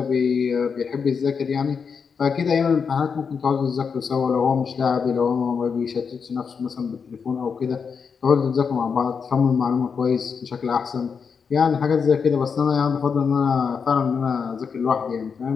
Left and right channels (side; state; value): right; quieter; 6.0 dB